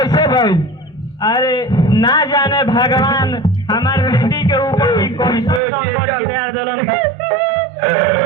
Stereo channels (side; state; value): left; drops out; at 5.6 s